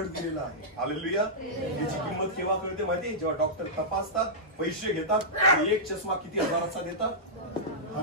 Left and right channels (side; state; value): both; normal; correlation -0.14